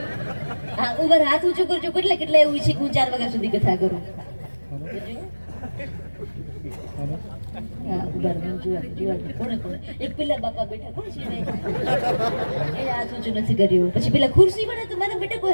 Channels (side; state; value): both; inverted; correlation -1.00